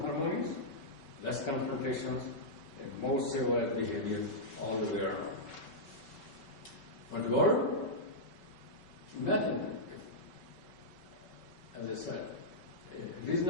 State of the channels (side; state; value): right; late; 5.3 ms